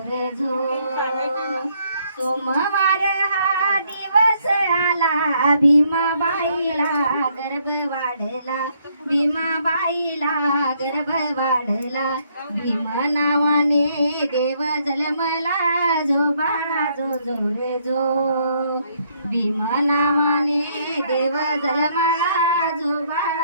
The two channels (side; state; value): both; inverted; correlation -0.70